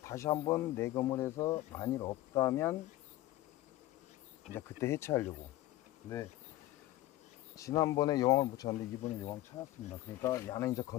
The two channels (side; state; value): right; quieter; 15.8 dB